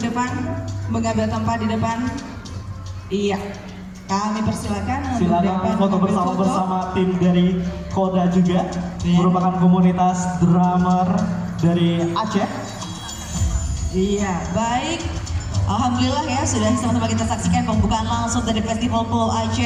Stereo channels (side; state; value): both; identical; correlation 1.00